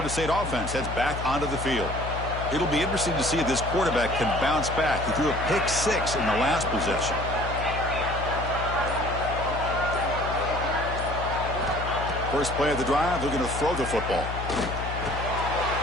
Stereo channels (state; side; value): noise; left; hum, 6 dB below the sound